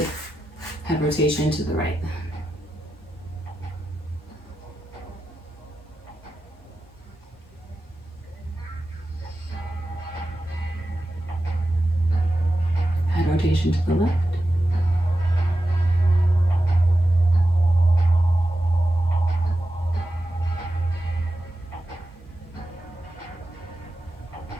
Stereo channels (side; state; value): both; normal; correlation 0.92